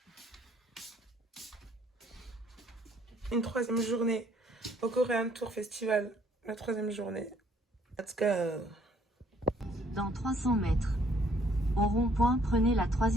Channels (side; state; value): both; normal; correlation 0.62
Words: Une 3e journée au Korean Tour Festival. La 3e journée. Let's go. Dans 300 mètres. Au rond-point, prenez la